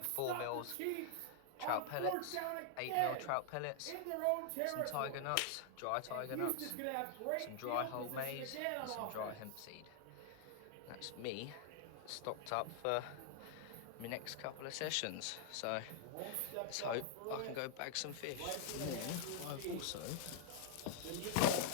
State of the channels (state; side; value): different; both; correlation -0.01